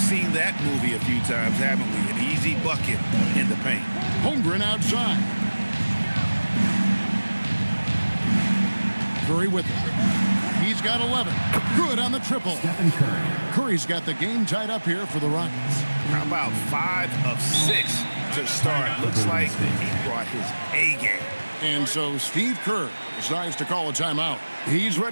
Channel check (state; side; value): inverted; both; correlation -1.00